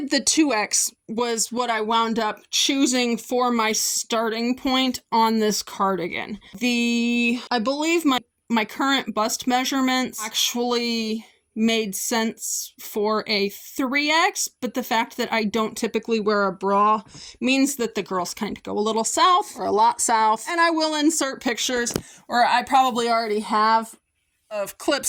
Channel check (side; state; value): both; identical; correlation 1.00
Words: the 2X was what I wound up choosing for my starting point on this cardigan. I believe my current bust measurements actually made sense for a 3X, but the fact that I don't typically wear a bra means that the girls kind of go a little south or a lot south. And I will insert pictures, or I probably already have, of